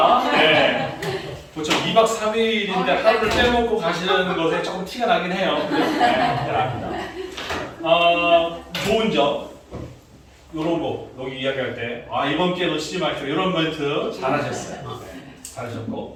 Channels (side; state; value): both; identical; correlation 1.00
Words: 네. 보통 2박 3일인데 하루를 빼먹고 가시는 것에 조금 티가 나긴 해요. 네, 좋은 점, 요런 거, 여기 이야기할 때, 이번 기회 놓치지 마십시오. 이런 멘트 잘하셨어요. 네,